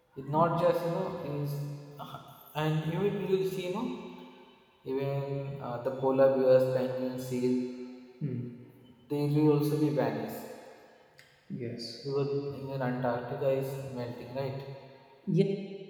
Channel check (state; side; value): identical; both; correlation 1.00